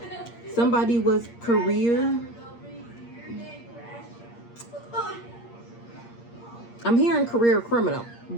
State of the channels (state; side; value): late; right; 8.6 ms